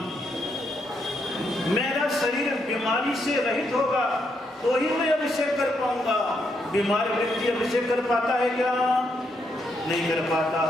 मेरा शरीर बीमारी से रहित होगा तो ही मैं अभिषेक कर पाऊंगा। बीमार व्यक्ति अभिषेक कर पाता है क्या? नहीं कर पाता।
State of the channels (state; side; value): normal; both; correlation 0.78